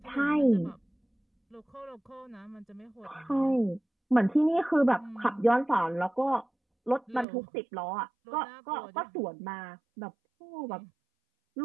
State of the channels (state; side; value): drops out; left; at 7.2 s